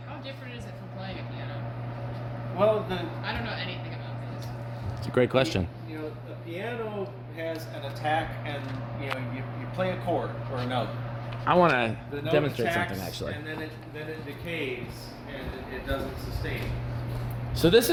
how different is it from playing a piano? well, I don't know anything about this. It's a great question. the piano has an attack, and you play a chord or a note. I want The to note demonstrate attacks, something, actually. and then it decays, and it doesn't sustain. So this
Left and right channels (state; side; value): identical; both; correlation 1.00